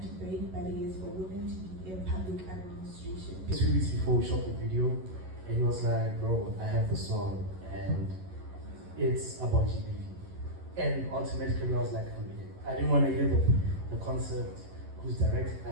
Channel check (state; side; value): late; left; 11 ms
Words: break barriers for women to be in public administration. 2 weeks before we shot the video, and he was like, bro, I have the song and it's about GBV. And automatically I was like, I'm in. I didn't want to hear the concept, who's directing,